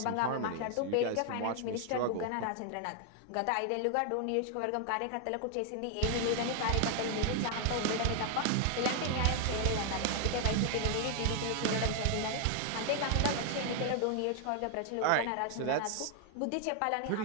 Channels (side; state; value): both; different; correlation 0.00